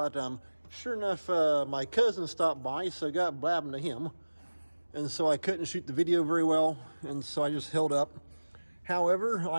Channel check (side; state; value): both; inverted; correlation -1.00